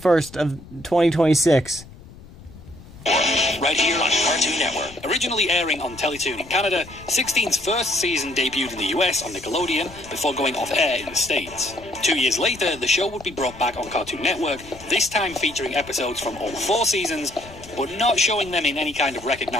of 2026. Right here on Cartoon Network. Originally airing on Teletoon in Canada, 16's first season debuted in the US on Nickelodeon before going off air in the States. 2 years later, the show would be brought back on Cartoon Network, this time featuring episodes from all 4 seasons, but not showing them in any kind of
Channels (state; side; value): noise; left; rumble, 19 dB below the sound